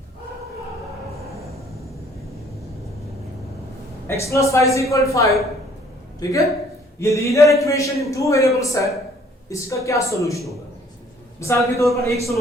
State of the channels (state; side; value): normal; both; correlation 0.59